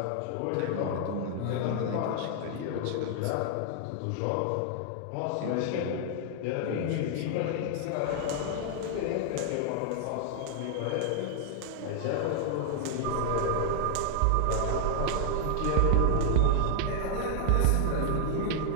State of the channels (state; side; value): different; both; correlation 0.00